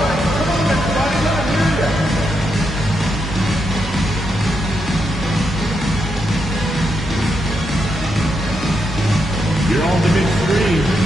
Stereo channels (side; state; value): both; normal; correlation 0.82